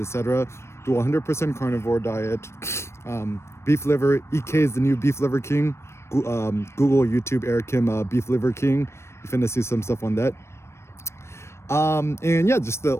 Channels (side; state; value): right; late; 0.13 ms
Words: Do 100% carnivore diet. Beef liver, EK is the new beef liver king. Google, YouTube, Eric Kim, beef liver king. You're finna see some stuff on that. And yeah, just the